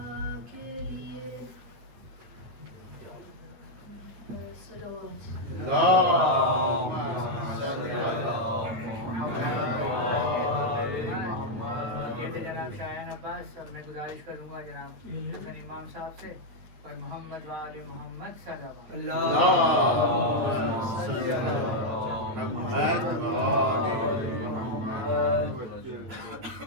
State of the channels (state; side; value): late; left; 9.3 ms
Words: کے لیے، صلوات۔ یہ تھے جناب شایان عباس، اور میں گزارش کروں گا جناب حسن امام صاحب سے، پر محمد و آل محمد صلوات۔